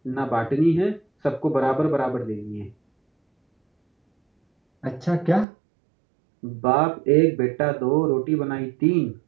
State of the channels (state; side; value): drops out; left; at 5.5 s